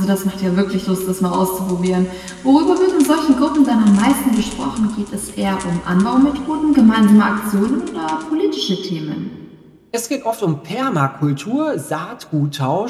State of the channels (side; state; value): both; identical; correlation 1.00